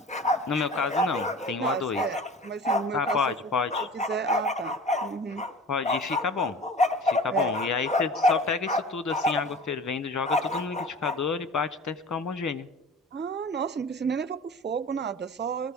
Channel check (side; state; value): both; normal; correlation 0.39